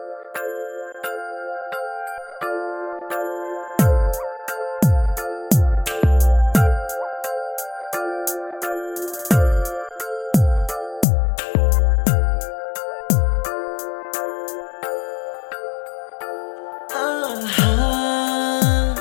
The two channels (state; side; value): drops out; right; at 11.1 s